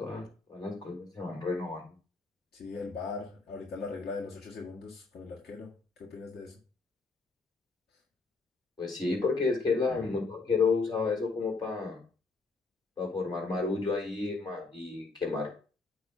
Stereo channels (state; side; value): quieter; right; 3.9 dB